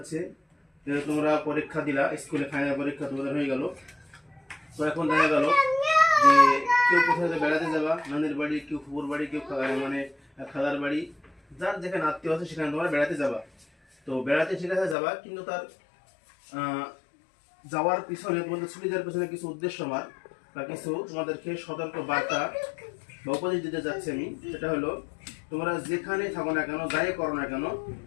যে তোমরা পরীক্ষা দিলা, স্কুলে ফাইনাল পরীক্ষা তোমাদের হয়ে গেল। তো এখন দেখা গেল যে কেউ কোথাও বেড়াতে যাবা, নানির বাড়ি, কেউ ফুপুর বাড়ি, কেউ মানে খালার বাড়ি, যার যেখানে আত্মীয় আছে সেখানে তোমরা বেড়াতে যাবা। তো বেড়াতে সেখানে যাবা, কিন্তু তার যাওয়ার পিছনে, তোমাদের ছুটি দেওয়ার পিছনে কিছু উদ্দেশ্য আমার বা কিছু তোমাদেরকে সতর্ক বার্তা বা উপদেশ দিতে যাচ্ছি আমি। সেটা হলো, তোমরা যেখানে থাকো না কেন, যাই করো না কেন,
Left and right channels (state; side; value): drops out; right; at 15.0 s